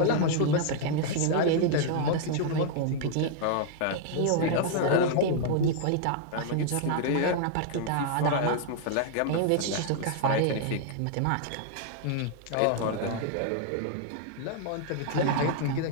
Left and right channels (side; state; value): both; different; correlation -0.01